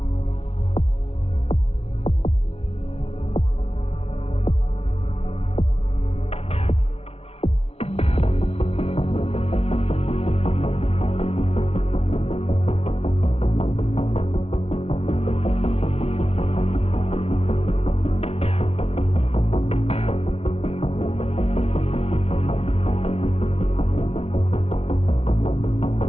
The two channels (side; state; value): right; late; 0.30 ms